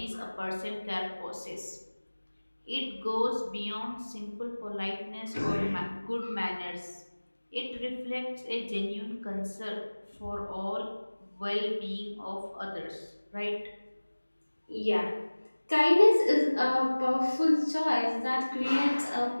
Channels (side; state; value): both; inverted; correlation -1.00